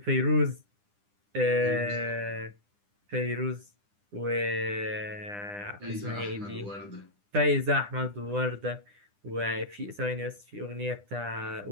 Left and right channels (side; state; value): left; late; 9.9 ms